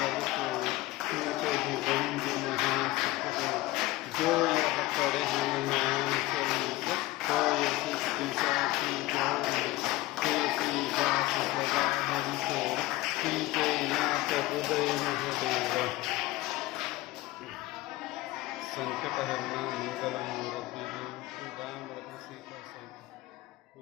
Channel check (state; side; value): quieter; right; 18.2 dB